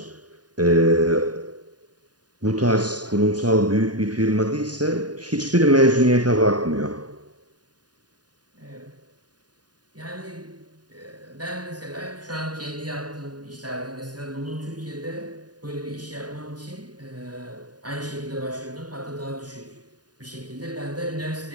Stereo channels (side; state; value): left; late; 0.69 ms